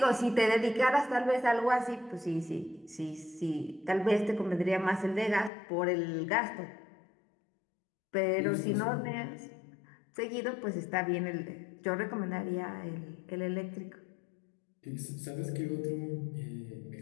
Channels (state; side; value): drops out; right; at 5.5 s